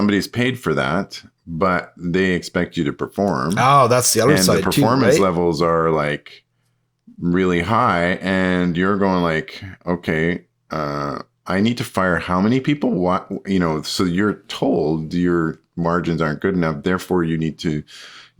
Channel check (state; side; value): identical; both; correlation 1.00